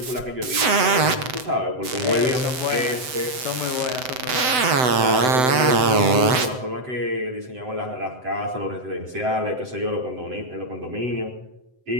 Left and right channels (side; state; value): left; late; 7.9 ms